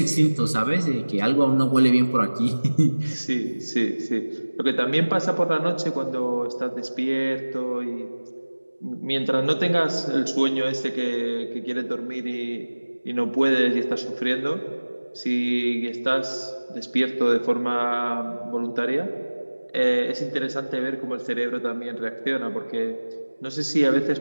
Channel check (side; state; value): both; inverted; correlation -1.00